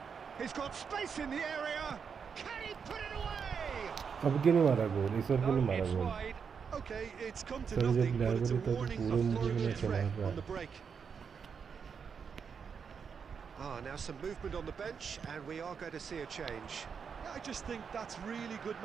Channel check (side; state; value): left; quieter; 6.4 dB